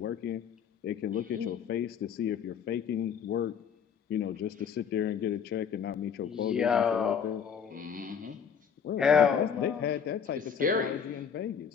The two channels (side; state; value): right; quieter; 7.4 dB